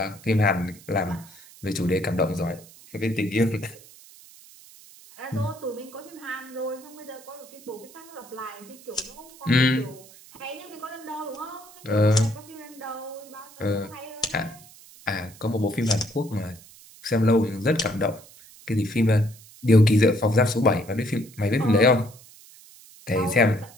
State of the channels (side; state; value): right; noise; hiss, 22 dB below the sound